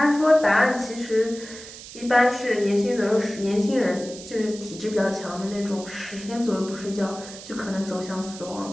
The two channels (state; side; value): noise; right; hiss, 15 dB below the sound